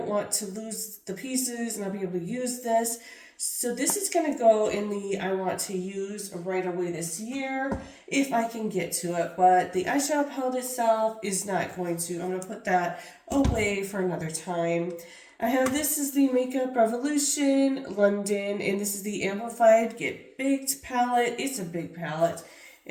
want to lose the pieces and not be able to use this. So this is going to go in the I want to use right away this year if I can get to it, but the eyeshadow palette itself is not going to. I'm going to put that away for another time. I have this is the Makeup Revolution London, and this is the Amplified Get Baked palette. It's a big palette,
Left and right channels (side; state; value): both; identical; correlation 1.00